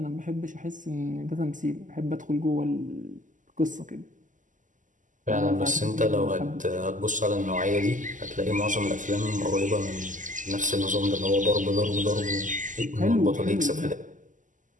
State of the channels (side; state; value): left; late; 0.37 ms